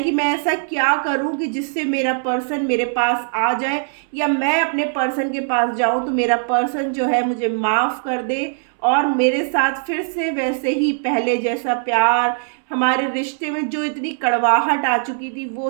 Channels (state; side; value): silent; left; 66 dB below the other